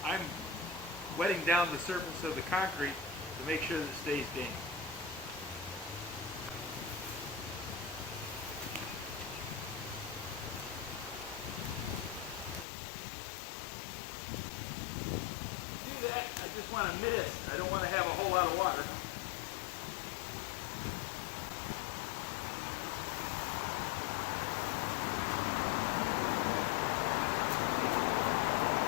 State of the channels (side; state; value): right; drops out; at 12.7 s